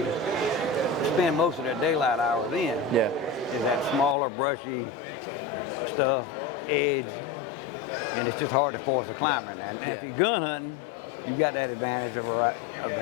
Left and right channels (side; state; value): right; drops out; at 4.2 s